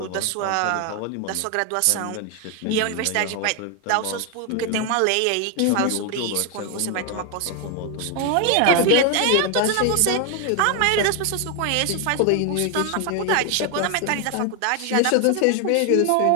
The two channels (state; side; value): different; both; correlation 0.01